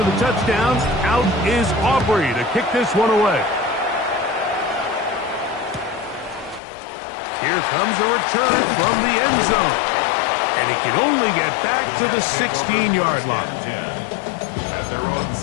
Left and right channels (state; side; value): drops out; right; at 6.6 s